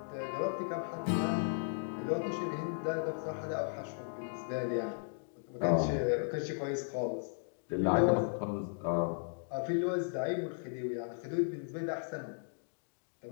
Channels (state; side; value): silent; right; digital silence